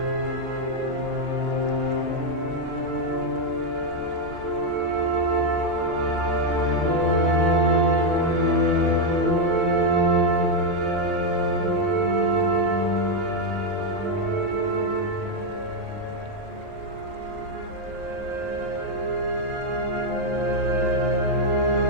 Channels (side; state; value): left; late; 40 ms